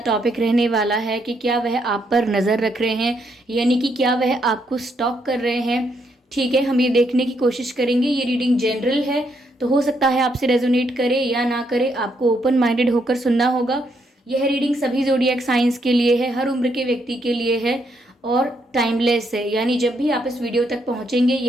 रहने वाला है कि क्या वह आप पर नज़र रख रहे हैं, यानी कि क्या वह आपको स्टॉक कर रहे हैं। ठीक है, हम ये देखने की कोशिश करेंगे। ये रीडिंग जनरल है, तो हो सकता है आपसे रेजोनेट करे या ना करे, आपको ओपन माइंडेड होकर सुनना होगा। यह रीडिंग सभी ज़ोडिएक साइंस के लिए है, हर उम्र के व्यक्ति के लिए है और टाइमलेस है, यानी जब भी आप इस वीडियो तक पहुँचेंगे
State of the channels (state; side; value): normal; both; correlation 0.75